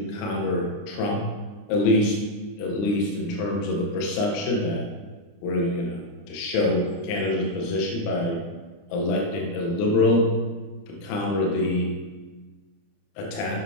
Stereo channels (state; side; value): late; right; 29 ms